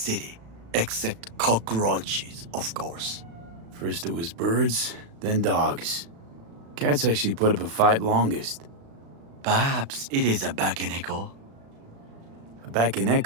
except cockroaches, of course. First it was birds, then dogs. Cats actually put up a fight longest. Perhaps it is a bakeneko. A back and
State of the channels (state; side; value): late; left; 36 ms